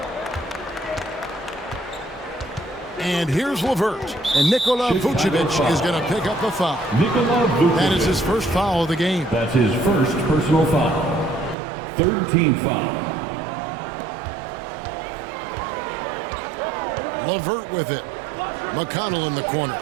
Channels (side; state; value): left; drops out; at 11.6 s